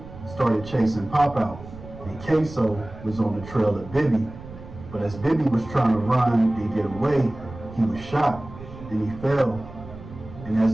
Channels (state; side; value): noise; right; rumble, 15 dB below the sound